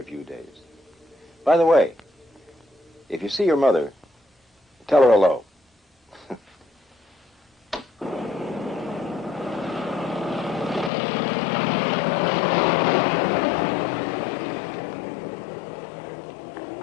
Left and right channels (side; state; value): right; drops out; at 10.9 s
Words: few days. By the way, if you see your mother, tell her hello.